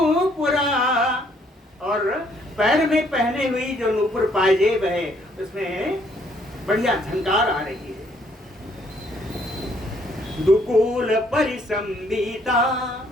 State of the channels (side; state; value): both; normal; correlation 0.66